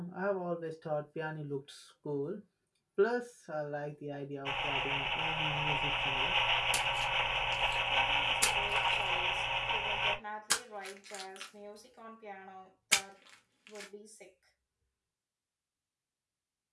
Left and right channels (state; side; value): identical; both; correlation 1.00